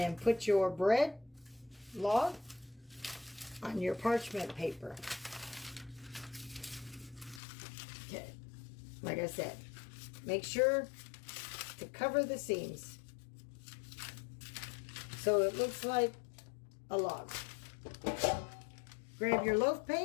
put your bread log on your parchment paper. Okay. Like I said, make sure to cover the seams so it looks like a log. Grab your loaf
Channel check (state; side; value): drops out; right; at 7.4 s